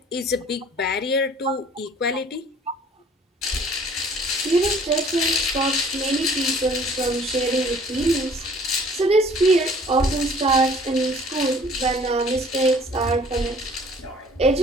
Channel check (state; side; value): normal; both; correlation 0.54